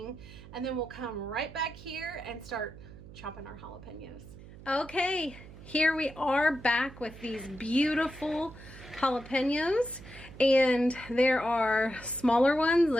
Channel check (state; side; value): noise; right; hum, 17 dB below the sound